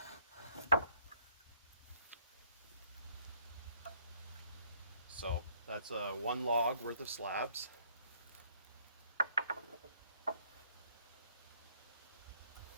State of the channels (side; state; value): both; inverted; correlation -0.64